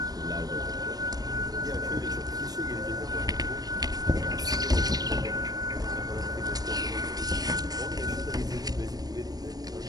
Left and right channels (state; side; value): late; left; 0.19 ms